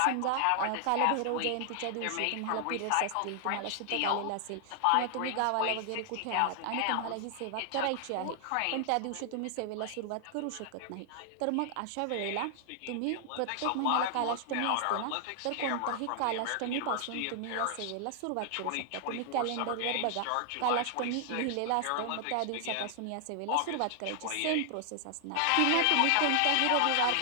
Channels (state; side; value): different; both; correlation 0.00